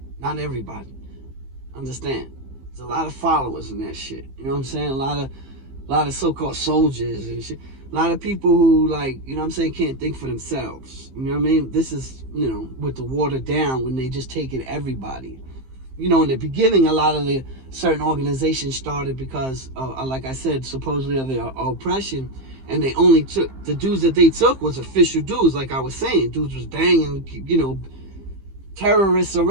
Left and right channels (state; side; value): late; left; 15 ms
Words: Not everybody. Understand? There's a lot of followers in that shit. You know what I'm saying? A lot of so-called soldiers and shit. A lot of people who, like, you know what I'm saying, can't think for themselves. You know what I mean? This is, you know, with the watered down when they just taking everybody. You know, in the beginning, a lot of the certain organizations started because, like I said, supposedly of the oppression, and they only took, the dudes that they took was official dudes, like I was saying. Dudes was banging, you know, terrorists